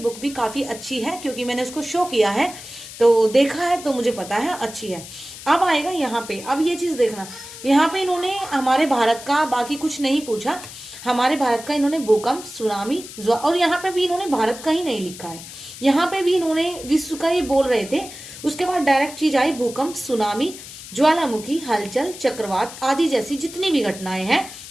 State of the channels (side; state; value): left; noise; hiss, 14 dB below the sound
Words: भी काफी अच्छी है क्योंकि मैंने उसको शो किया है, तो देखा है, तो मुझे पता है अच्छी है। अब आएगा यहाँ पे, अब ये चीज देखना, यहाँ पे इन्होंने हमारे भारत का बाकी कुछ नहीं पूछा, हमारे भारत का इन्होंने भूकंप, सुनामी, और यहाँ पे भी इन्होंने भारत का ही नहीं लिखा है, यहाँ पे भी इन्होंने विश्व का ही बोल रहे थे। उसके बाद डायरेक्ट चीज आई भूकंप, सुनामी, ज्वालामुखी, हलचल, चक्रवात आदि जैसी जितनी भी घटनाएं हैं